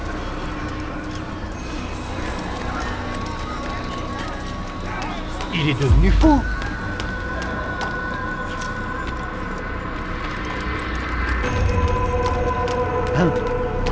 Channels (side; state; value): both; identical; correlation 1.00